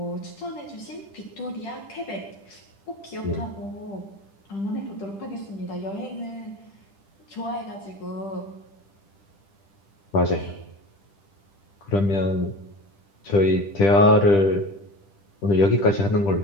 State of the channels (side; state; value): right; late; 10 ms